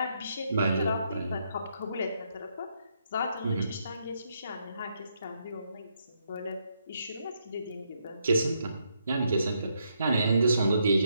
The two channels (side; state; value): both; inverted; correlation -0.77